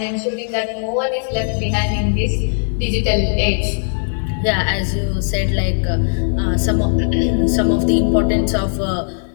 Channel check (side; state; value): right; silent; digital silence